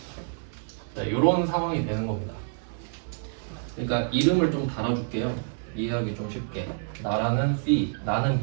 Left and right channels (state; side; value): silent; left; digital silence